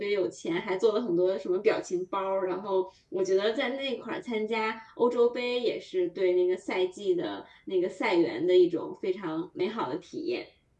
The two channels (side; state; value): both; identical; correlation 1.00